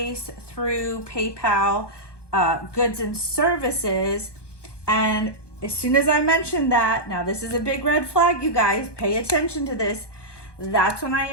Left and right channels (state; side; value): late; right; 1.2 ms